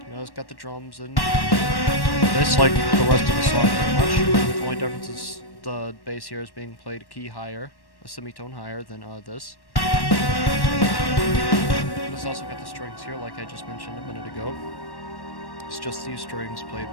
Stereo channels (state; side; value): late; right; 1.1 ms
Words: You know, it's got the drums and this, like the rest of the song pretty much. The only difference is the bass here is being played a key higher, a semitone higher than this. And it's also got the strings here, like I just mentioned a minute ago. It's just these strings played